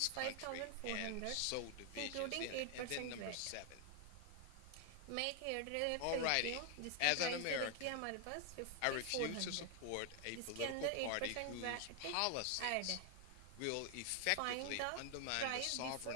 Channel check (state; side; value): different; both; correlation 0.00